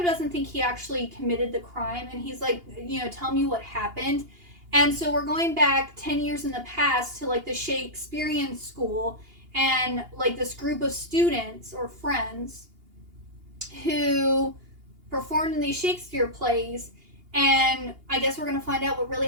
doesn't think he actually committed the crime, and he's like, you know, tell me what happened. And so we're going back 10 years in the past to like the Shakespearean school, and like this group of students or friends who performed in these Shakespeare plays, and I guess we're going to find out what really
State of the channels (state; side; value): late; left; 2.8 ms